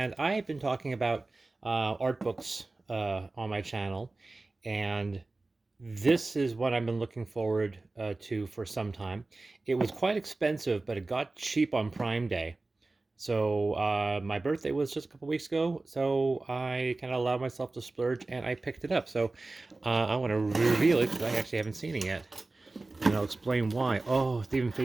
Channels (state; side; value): quieter; left; 3.2 dB